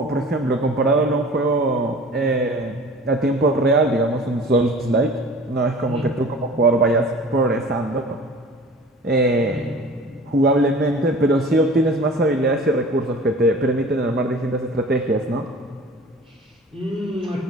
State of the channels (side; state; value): both; normal; correlation 0.43